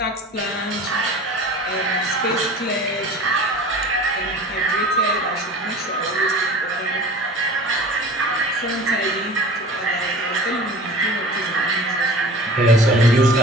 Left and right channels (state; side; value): normal; both; correlation 0.41